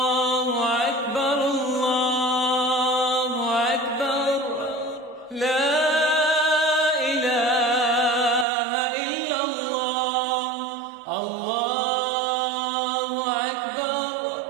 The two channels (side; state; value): left; drops out; at 8.5 s